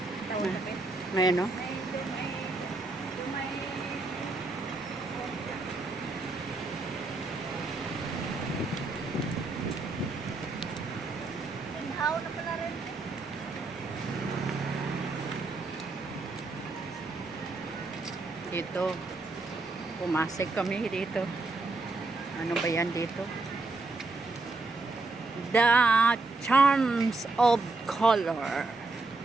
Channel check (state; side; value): quieter; left; 3.4 dB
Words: Tawag na ba? May ano? May inhaw na pala rin. Dito. Pumasok kami dito. Ano ba yan dito? The Charms of Color.